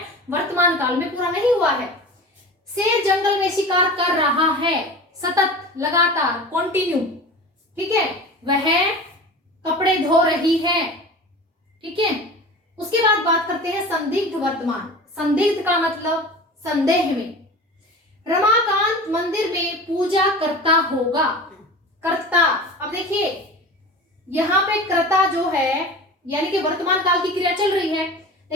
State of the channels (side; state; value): both; normal; correlation 0.35